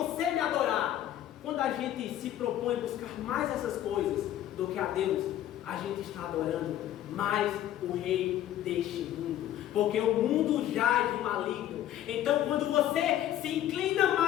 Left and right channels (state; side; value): quieter; right; 12.3 dB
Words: me adorar. Quando a gente se propõe buscar mais essas coisas do que a Deus, a gente está adorando mais o rei deste mundo, porque o mundo jaz do maligno. Então, quando você se inclina